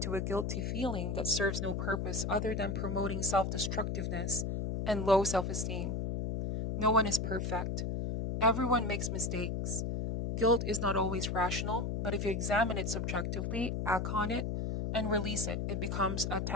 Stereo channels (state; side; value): noise; left; hum, 1 dB below the sound